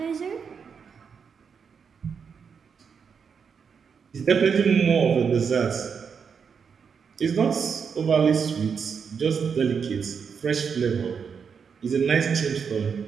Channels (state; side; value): quieter; left; 6.4 dB